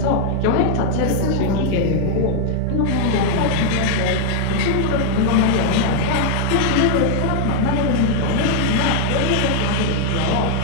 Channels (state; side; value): different; both; correlation 0.00